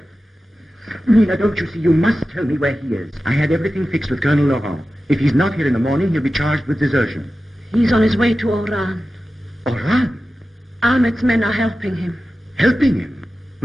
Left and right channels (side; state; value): both; normal; correlation 0.94